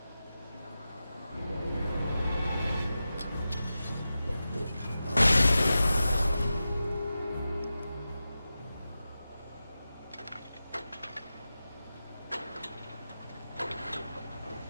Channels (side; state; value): both; inverted; correlation -0.93